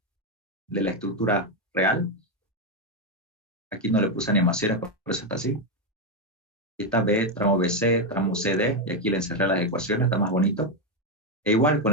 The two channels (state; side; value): normal; both; correlation 0.05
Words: de la estructura real. Aquí no le puse animaciones, por eso está así. Aquí está B, tramo BC, tramo CD, y aquí le encerré las ecuaciones, está más bonito. E igual con